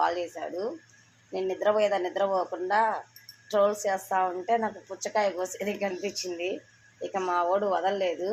చేశాడు. నేను నిద్రపోకుండా ట్రోల్స్ చేస్తూ ఉంటే నాకు పుచ్చకాయ కోసేది కనిపించింది. ఇక మా వాడు వదలలేదు,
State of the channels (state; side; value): identical; both; correlation 1.00